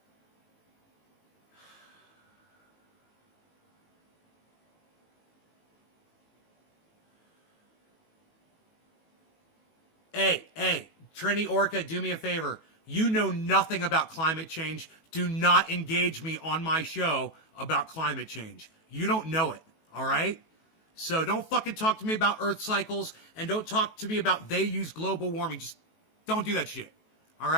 Hey, Trini Orca, do me a favor. You know nothing about climate change. Do not engage me on my show about climate change. You don't know it, all right? So don't fucking talk to me about Earth cycles, and don't talk to me about they use global warming. Just don't do that shit, all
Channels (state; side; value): late; right; 18 ms